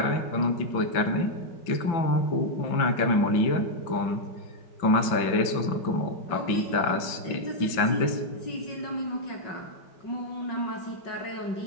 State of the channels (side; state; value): right; late; 5.8 ms